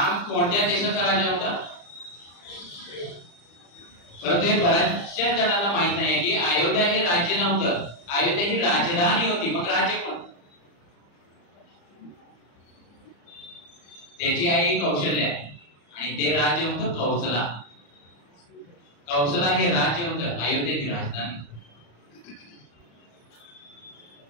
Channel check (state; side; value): late; right; 35 ms